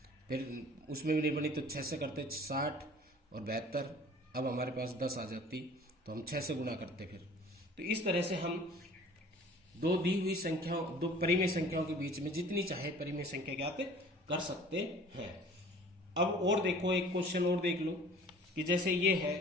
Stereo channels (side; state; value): both; normal; correlation 0.48